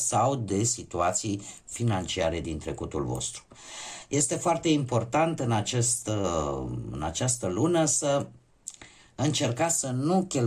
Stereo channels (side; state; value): both; identical; correlation 1.00